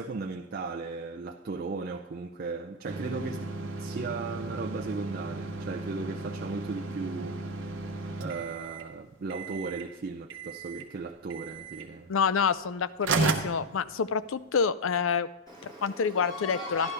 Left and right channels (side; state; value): both; normal; correlation 0.04